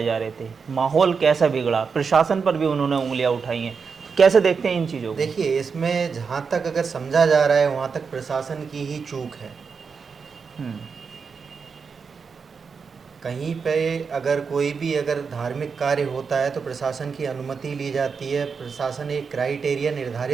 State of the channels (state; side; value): quieter; left; 5.6 dB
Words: जा रहे थे, माहौल कैसा बिगड़ा। प्रशासन पर भी उन्होंने उंगलियां उठाई हैं। तो कैसे देखते हैं इन चीज़ों को? देखिए, इसमें जहाँ तक अगर समझा जा रहा है वहाँ तक प्रशासन की ही चूक है। हम्म। कहीं पे अगर कोई भी अगर धार्मिक कार्य होता है तो प्रशासन की अनुमति ली जाती है। प्रशासन एक क्राइटेरिया